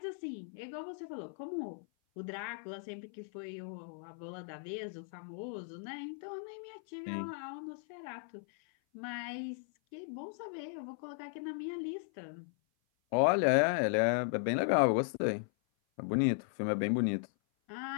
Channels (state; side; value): silent; right; 53 dB below the other